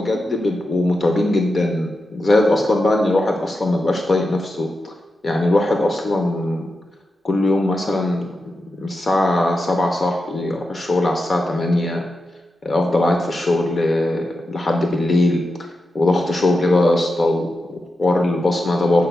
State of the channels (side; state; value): both; normal; correlation 0.90